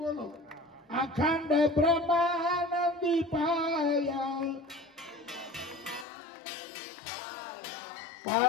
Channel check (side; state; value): right; drops out; at 6.1 s